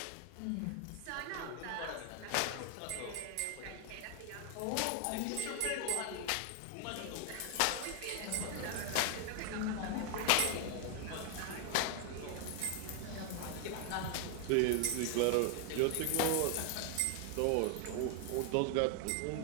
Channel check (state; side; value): different; both; correlation 0.00